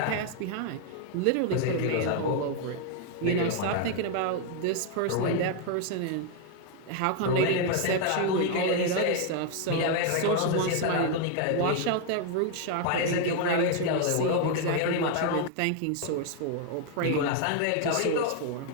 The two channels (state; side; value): different; both; correlation 0.00